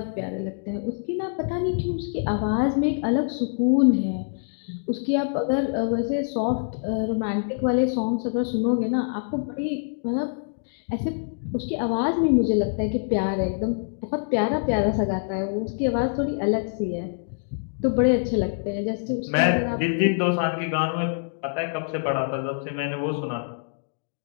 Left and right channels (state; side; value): silent; right; digital silence